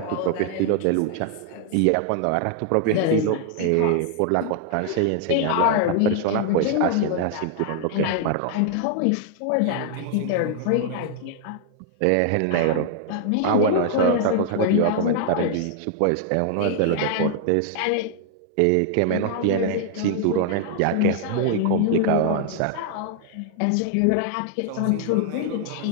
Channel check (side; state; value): both; different; correlation 0.00